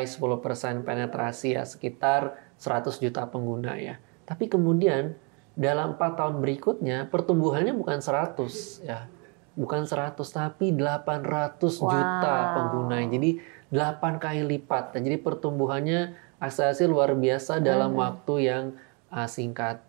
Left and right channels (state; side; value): quieter; left; 33.8 dB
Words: 10% penetrasi ya, sekitar 100 juta pengguna ya. Tapi kemudian dalam 4 tahun berikutnya pertumbuhannya bukan 100 ya. Bukan 100 tapi 800 juta pengguna. Jadi 8 kali lipat. Jadi pertumbuhannya akselerasi luar biasa dalam waktu yang singkat.